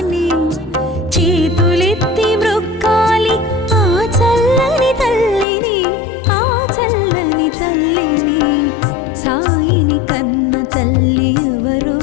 చేతులెత్తి మ్రొక్కాలి ఆ చల్లని తల్లిని, ఆ చల్లని తల్లిని. సాయిని కన్న తల్లి ఎవరు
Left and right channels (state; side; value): drops out; right; at 5.5 s